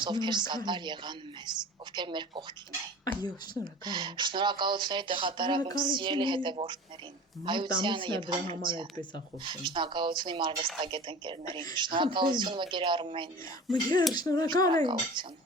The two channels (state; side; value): normal; both; correlation 0.39